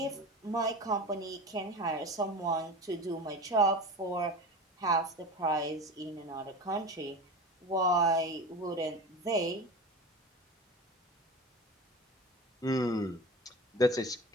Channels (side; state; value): both; normal; correlation 0.31